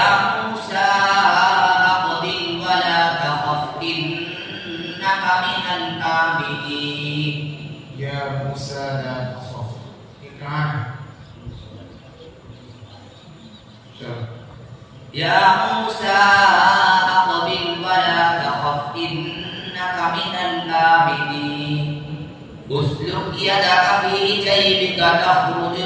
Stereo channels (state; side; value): identical; both; correlation 1.00